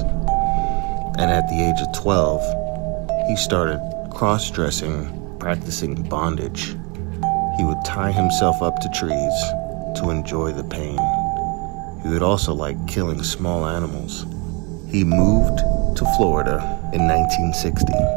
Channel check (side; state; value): left; quieter; 30.2 dB